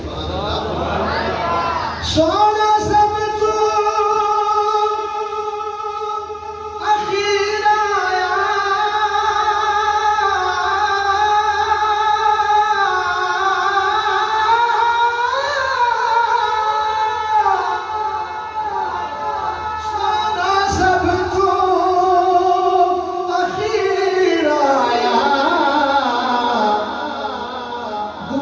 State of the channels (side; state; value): both; identical; correlation 1.00